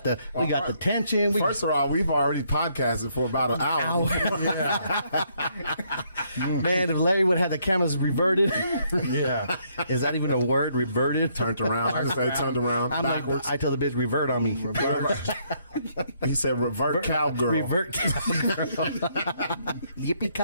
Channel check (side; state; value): both; inverted; correlation -0.71